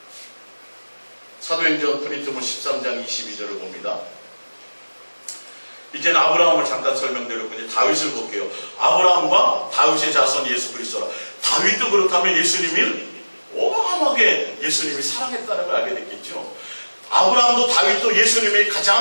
사도행전 프린트본 13장 22절을 봅니다. 이제는 아브라함을 잠깐 설명드렸고 이제 다윗을 볼게요. 아브라함과 다윗의 자손 예수 그리스도라. 다윗도 그렇다면 예수님을 어마어마하게 예수님이 사랑했다는 걸 알게 됐겠죠. 아브라함도 다윗도 예수님이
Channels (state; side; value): inverted; both; correlation -1.00